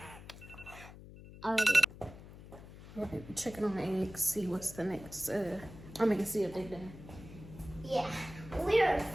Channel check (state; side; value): noise; left; hum, 16 dB below the sound